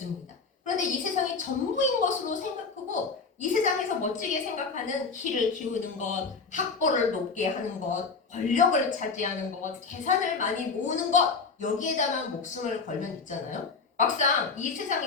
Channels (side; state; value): right; quieter; 4.7 dB